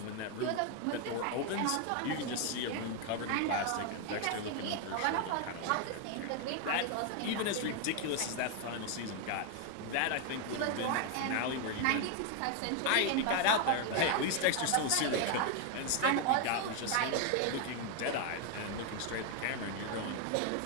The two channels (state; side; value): different; both; correlation 0.01